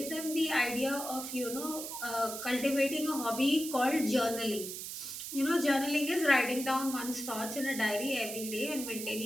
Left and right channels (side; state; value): right; noise; hiss, 7 dB below the sound